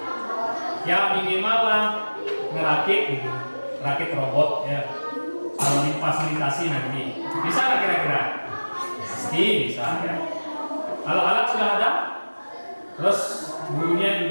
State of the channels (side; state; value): both; inverted; correlation -1.00